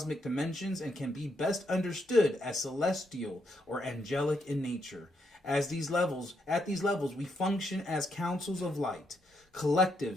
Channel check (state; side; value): normal; both; correlation 0.78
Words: dimensions and can be best understood as celestial or angelic in nature. At these levels, we function as councils of light,